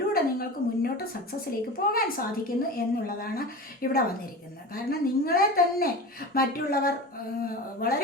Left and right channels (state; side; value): normal; both; correlation 0.30